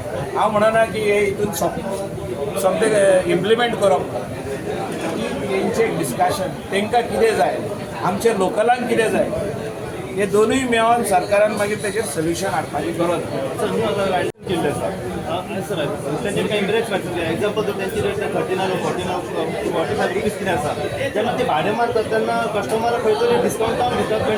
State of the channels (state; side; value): identical; both; correlation 1.00